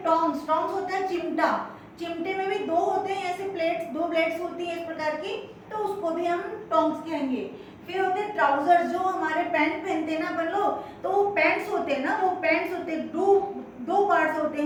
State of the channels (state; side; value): identical; both; correlation 1.00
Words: टोंग्स, टोंग्स होता है चिमटा, चिमटे में भी दो होते हैं ऐसे प्लेट्स, दो ब्लेड्स होती है इस प्रकार की, तो उसको भी हम टोंग्स कहेंगे। फिर होते हैं ट्राउजर्स, जो हमारे पैंट पहनते हैं ना अपन लोग, तो वो पैंट्स होते हैं ना, वो पैंट्स होते हैं, दो पार्ट्स होते